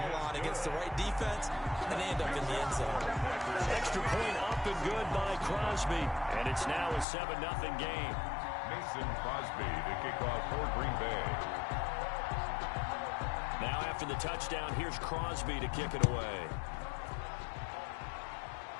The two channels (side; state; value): right; drops out; at 7.1 s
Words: on against the right defense, and they end up in the end zone. Extra point up and good by Crosby. And it's now a 7-0 game. Mason Crosby, the kickoff for Green Bay. Now after the touchdown, here's Crosby to kick it away.